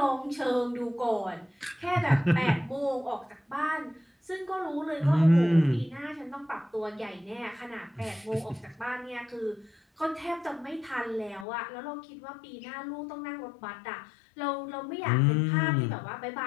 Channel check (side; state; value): right; drops out; at 11.5 s